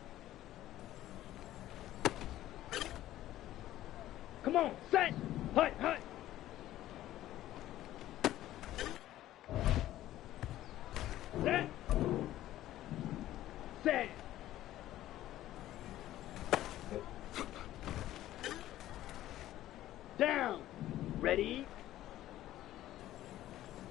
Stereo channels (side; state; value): right; quieter; 14.0 dB